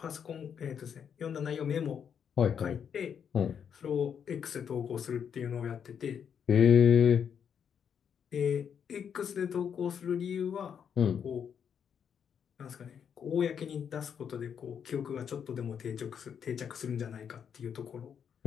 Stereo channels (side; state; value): right; quieter; 7.7 dB